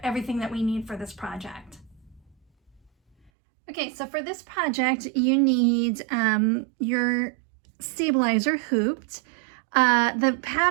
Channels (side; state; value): left; drops out; at 3.3 s